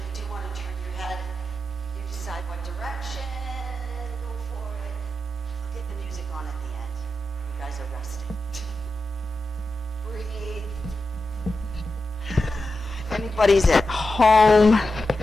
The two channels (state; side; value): normal; both; correlation 0.90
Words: you do want to turn your head, you decide what direction, go for it. I'll get the music on at the end. You guys are resting. Breathe. If anybody's at home,